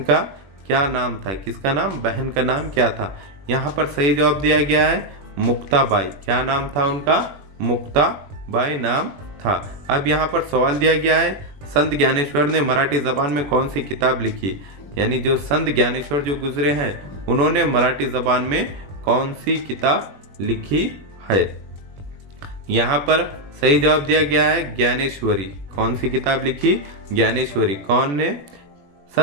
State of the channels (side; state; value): left; late; 21 ms